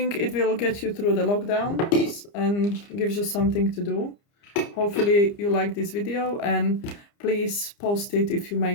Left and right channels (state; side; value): late; right; 29 ms